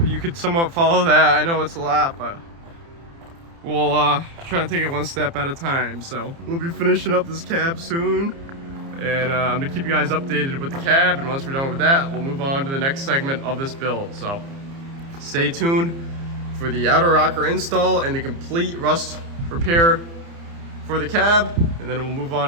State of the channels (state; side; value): late; left; 30 ms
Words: you could somewhat follow that. I know it's a lot, but we'll try to take it one step at a time. So we'll be finishing up this cab soon, and I'm gonna keep you guys updated with the cab, and once we're done with that, we'll move on to the next segment of this build. So stay tuned for the outer rocker install and the complete rust repair for the cab, and then we'll move